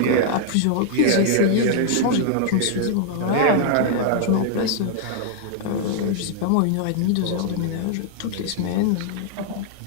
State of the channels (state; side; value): different; both; correlation -0.01